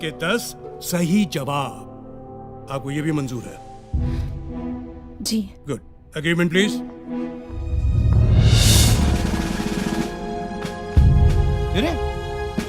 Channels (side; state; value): both; identical; correlation 1.00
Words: के 10 सही जवाब। आपको ये भी मंजूर है? जी। गुड। Agreement please. अरे